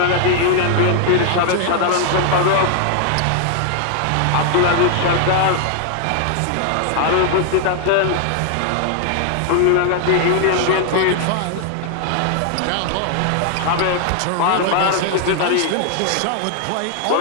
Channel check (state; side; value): different; both; correlation 0.00